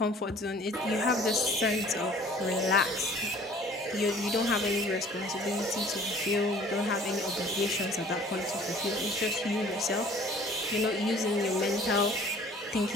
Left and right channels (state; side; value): normal; both; correlation 0.51